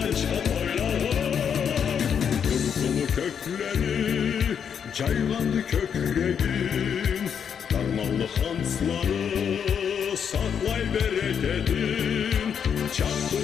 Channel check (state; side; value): quieter; right; 7.6 dB